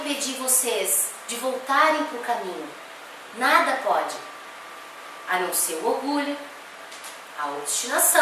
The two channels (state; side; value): identical; both; correlation 1.00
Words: vocês de voltarem para o caminho. Nada pode. A não ser o orgulho, a